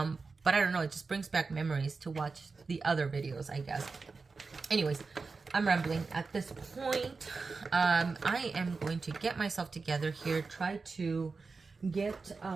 I don't know, it just brings back memories to watch the other videos, I guess. Anyways, I'm rambling at this point. I am going to get myself together here, try to get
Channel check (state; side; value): quieter; left; 4.3 dB